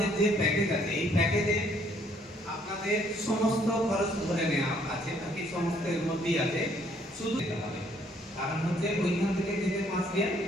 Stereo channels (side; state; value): both; normal; correlation 0.65